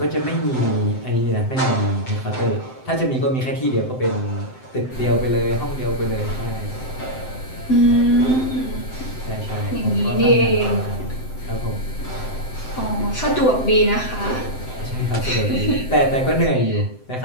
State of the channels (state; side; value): late; right; 7.8 ms